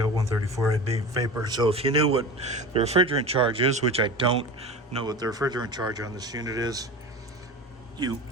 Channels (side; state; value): both; normal; correlation 0.31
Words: 134 vapor. So if you knew what the refrigerant charge is, which I don't know what the refrigerant charge on this unit is, you